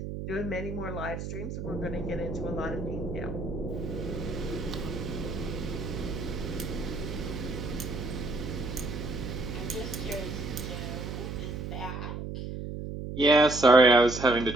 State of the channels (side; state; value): right; noise; hum, 6 dB below the sound